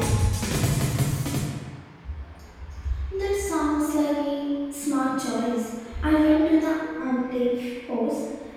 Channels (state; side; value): identical; both; correlation 1.00